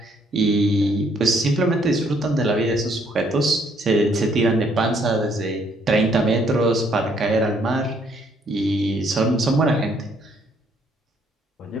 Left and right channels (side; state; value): both; normal; correlation 0.67